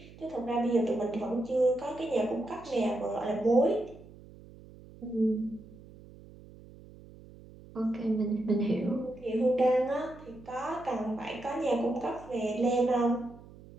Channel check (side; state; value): right; noise; hum, 20 dB below the sound